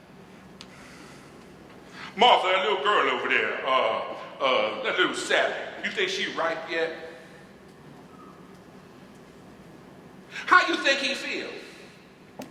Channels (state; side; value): identical; both; correlation 1.00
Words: Martha, that little girl over there, that little Sally, you think she ripe yet? How you think he feel?